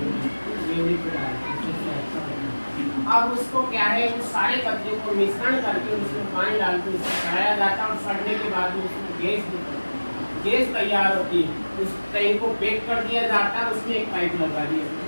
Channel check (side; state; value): both; inverted; correlation -1.00